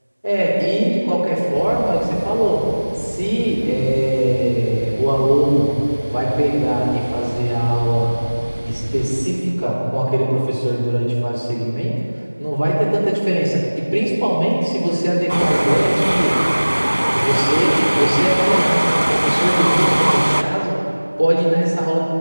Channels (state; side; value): inverted; both; correlation -1.00